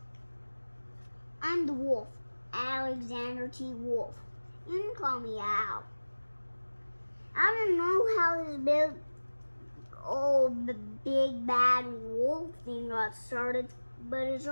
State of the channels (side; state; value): both; inverted; correlation -1.00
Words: I'm the wolf, Alexander T. Wolf. You can call me Al. I don't know how this big bad wolf thing got started, but it's